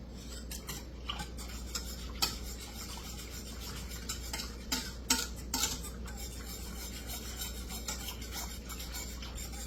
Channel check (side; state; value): both; identical; correlation 1.00